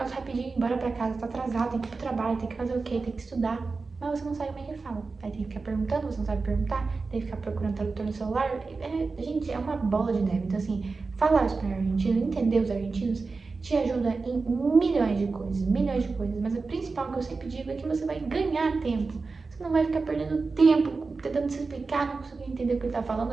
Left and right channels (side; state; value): left; quieter; 4.2 dB